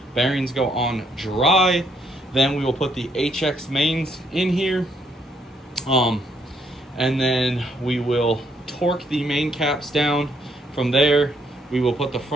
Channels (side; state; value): both; normal; correlation 0.71